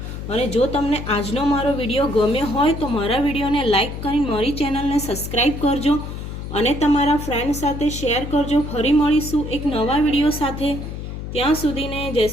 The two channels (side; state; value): left; noise; hum, 8 dB below the sound